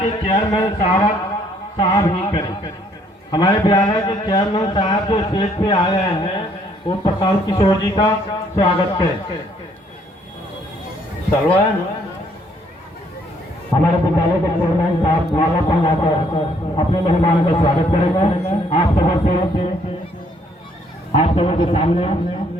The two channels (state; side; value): normal; both; correlation 0.66